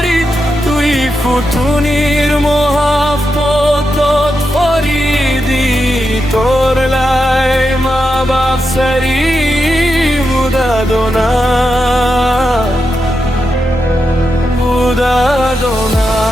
tui futunir mohabbatot faridi. Tor lai ma bap sari budadona, budadona.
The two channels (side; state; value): both; normal; correlation 0.87